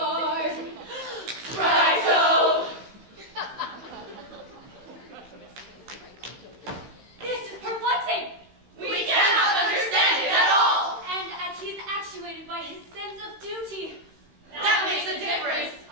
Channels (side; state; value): left; late; 16 ms